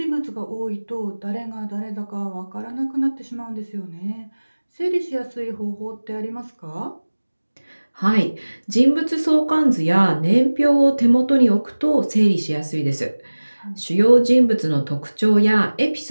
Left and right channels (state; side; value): inverted; both; correlation -1.00